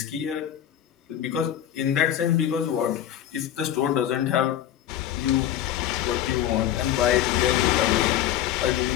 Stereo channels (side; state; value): right; quieter; 11.3 dB